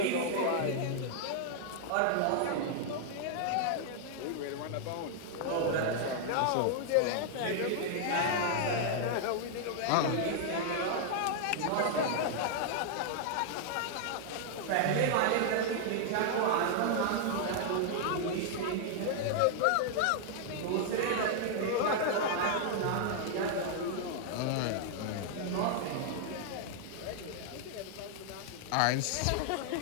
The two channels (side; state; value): both; different; correlation 0.00